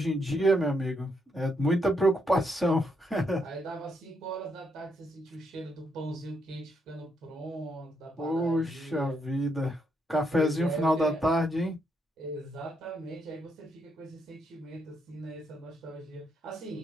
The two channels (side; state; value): both; normal; correlation 0.77